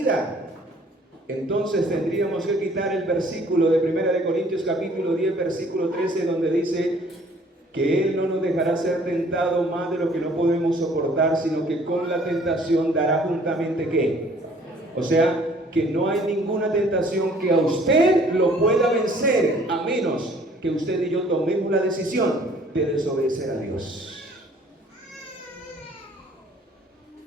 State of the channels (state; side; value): normal; both; correlation 0.57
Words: Entonces tendríamos que quitar el versículo de 1 Corintios capítulo 10 versículo 13, donde dice que Él no nos dejará ser tentado más de lo que no podemos soportar, sino que con la tentación dará juntamente ¿qué? O sea, que no hay ninguna tentación que a usted lo pueda vencer, a menos que usted y yo tomemos la decisión de desobedecer a Dios.